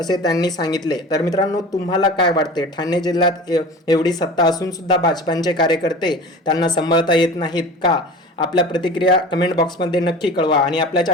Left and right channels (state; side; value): normal; both; correlation 0.37